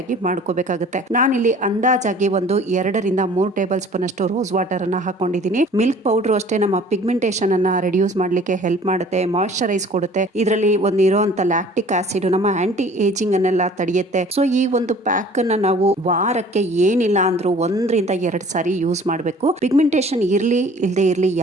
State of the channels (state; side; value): normal; both; correlation 0.50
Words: ಮಾಡ್ಕೋಬೇಕಾಗುತ್ತೆ. ನಾನಿಲ್ಲಿ ಅಂದಾಜಾಗಿ ಒಂದು 2 ರಿಂದ 3 ಟೇಬಲ್ ಸ್ಪೂನ್ ಅಷ್ಟು ರೋಸ್ ವಾಟರ್ ಅನ್ನ ಹಾಕೊಂಡಿದ್ದೀನಿ. ಮಿಲ್ಕ್ ಪೌಡರ್ ಅಷ್ಟೇ ನಮ್ಮ ಪಿಗ್ಮೆಂಟೇಷನ್ ಅನ್ನ ರಿಡ್ಯೂಸ್ ಮಾಡ್ಲಿಕ್ಕೆ ಹೆಲ್ಪ್ ಮಾಡುತ್ತೆ, ಮಾಯಿಶ್ಚರೈಸ್ ಕೊಡುತ್ತೆ. ಇದರಲ್ಲಿ ಒಂದು ಇರುವಂತ ಲ್ಯಾಕ್ಟಿಕ್ ಆಸಿಡ್ ನಮ್ಮ ಆಂಟಿ ಏಜಿಂಗ್ ಅನ್ನೆಲ್ಲ ತಡೆಯುತ್ತೆ. ಸೊ ಈ ಒಂದು ಪ್ಯಾಕ್ ಅನ್ನ ನಾವು ವಾರಕ್ಕೆ ಏನಿಲ್ಲ ಅಂದ್ರೂ 1 ರಿಂದ 2 ಸಾರಿ ಯೂಸ್ ಮಾಡಬೇಕು. ಪಿಗ್ಮೆಂಟೇಷನ್ ಇರ್ಲಿ ಇಲ್ಲದೆ ಇರ್ಲಿ